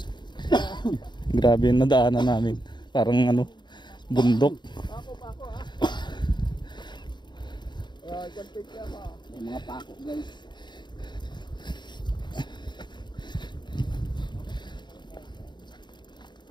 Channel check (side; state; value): right; late; 0.22 ms